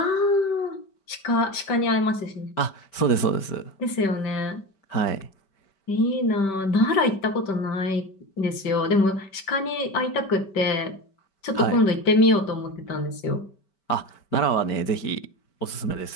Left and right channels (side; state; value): right; late; 5.2 ms